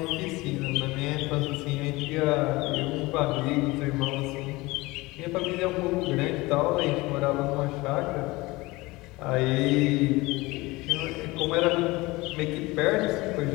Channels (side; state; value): right; quieter; 21.7 dB